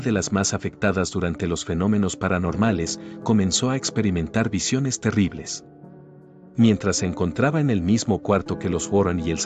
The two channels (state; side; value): identical; both; correlation 1.00